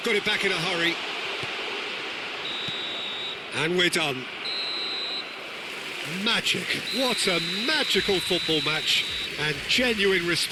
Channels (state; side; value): identical; both; correlation 1.00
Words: got it back in a hurry. And we're done. Magic. What a magical football match. And genuine